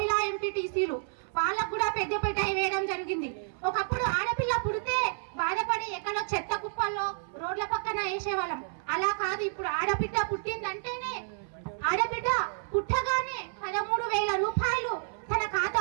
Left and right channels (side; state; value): left; silent; 58 dB below the other